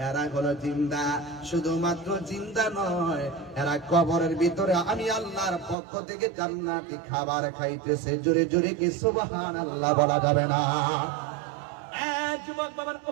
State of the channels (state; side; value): drops out; left; at 5.8 s